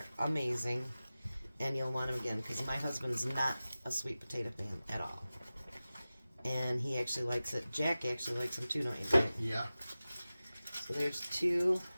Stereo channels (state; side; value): inverted; both; correlation -0.96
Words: amazing. And you'll want them again, because my husband is not a sweet potato fan at all. And he actually likes it. Jack actually likes them too, don't you, Jack? Yeah. So there's 2.